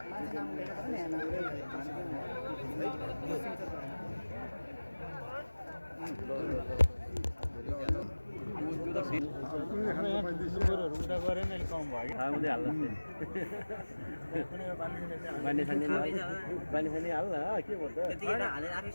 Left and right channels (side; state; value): both; inverted; correlation -1.00